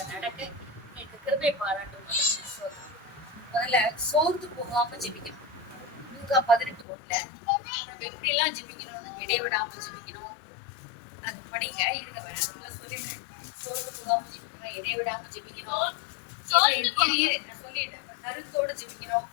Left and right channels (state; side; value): drops out; right; at 6.9 s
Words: நடக்க எனக்கு கிருபை பாராட்டும். முதல்ல சோர்ந்து போகாம ஜெபிக்கணும். லூக்கா 18:1 நம்ம எப்படி எல்லாம் ஜெபிக்கணும்னு இடைவிடாம ஜெபிக்கணும். அது படிங்க இருங்க வேணும்ல சொல்லிடுறேன். சோர்ந்து போகாம ஜெபிக்கணும், இடைவிடாம ஜெபிக்கணும். நான் சொல்லிடுறேன். கருத்தோட ஜெபிக்கணும்.